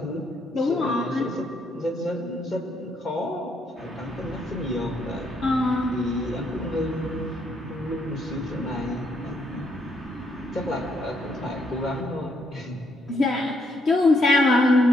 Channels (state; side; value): normal; both; correlation 0.73